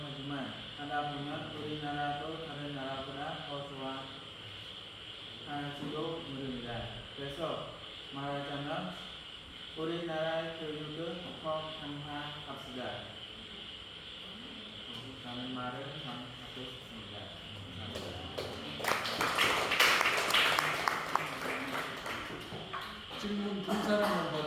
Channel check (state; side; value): identical; both; correlation 1.00